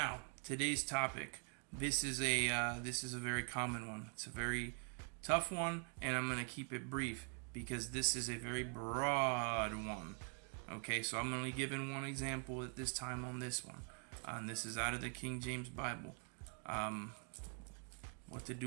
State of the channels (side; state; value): left; quieter; 39.2 dB